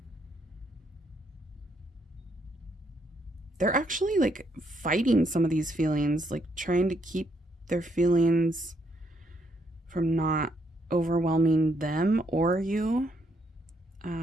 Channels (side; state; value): both; normal; correlation 0.73